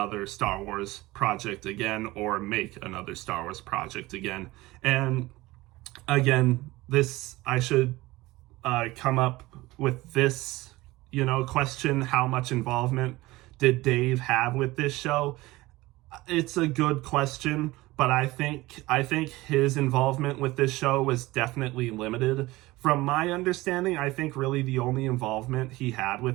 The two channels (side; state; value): left; quieter; 19.6 dB